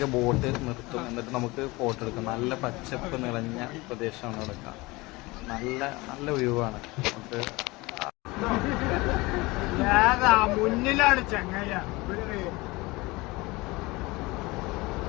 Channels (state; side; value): quieter; right; 22.6 dB